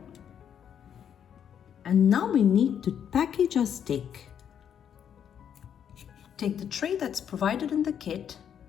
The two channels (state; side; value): quieter; right; 8.7 dB